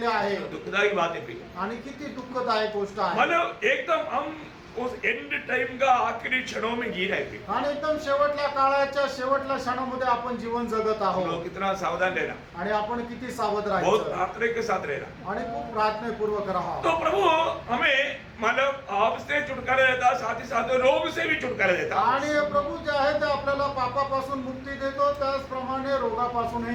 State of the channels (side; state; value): both; identical; correlation 1.00